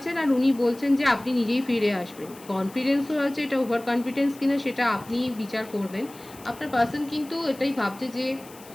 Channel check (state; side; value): noise; left; hiss, 21 dB below the sound